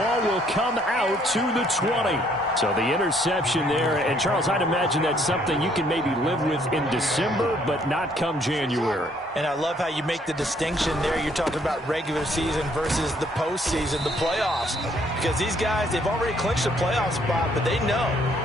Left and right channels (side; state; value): both; normal; correlation 0.65